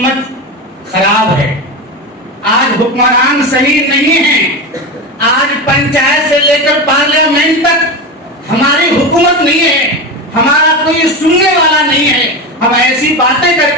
خراب ہے، آج حکمران صحیح نہیں ہیں، آج پنچایت سے لے کر پارلیمنٹ تک ہماری حکومت نہیں ہے، ہمارا کوئی سننے والا نہیں ہے۔ ہم ایسی باتیں کر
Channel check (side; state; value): both; normal; correlation 0.21